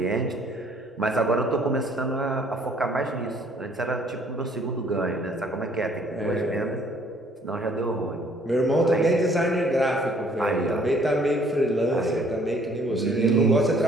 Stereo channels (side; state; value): both; normal; correlation 0.60